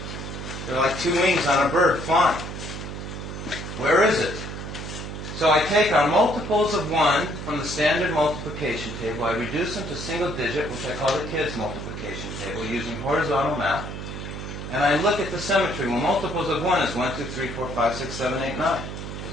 They're like 2 wings on a bird flying. Where is it? So I take our multiples of 1 from the standard multiplication table, I reduce them to single digit, which I call the kids' multiplication table, using horizontal math, and I look at the symmetry. Well, multiples of 1 is 1, 2, 3, 4, 5, 6, 7, 8, 9.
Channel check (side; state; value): right; noise; hum, 8 dB below the sound